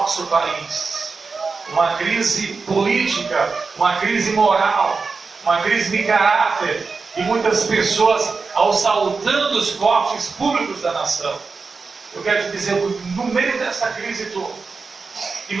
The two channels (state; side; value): quieter; left; 4.5 dB